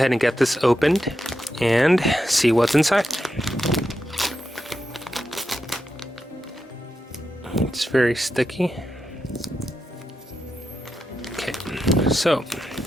and get this opened and see what's inside. It's very sticky. Okay, so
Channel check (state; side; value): normal; both; correlation 0.87